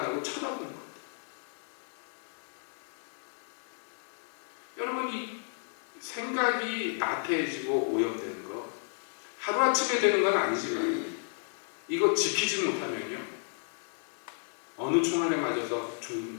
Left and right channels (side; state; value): right; silent; 56 dB below the other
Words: 하고 쳐다보는 것. 여러분 이 생각이 나태해지고 오염되는 거 하루아침에 되는 건 아니지만 이거 지키지 못하면요 어느 총알에 맞아서